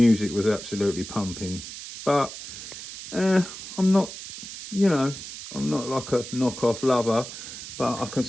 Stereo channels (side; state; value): right; noise; hiss, 11 dB below the sound